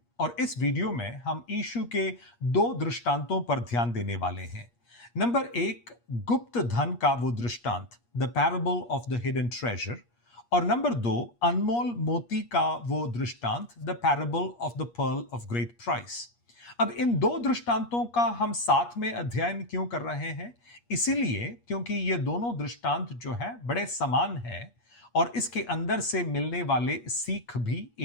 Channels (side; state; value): right; late; 8.4 ms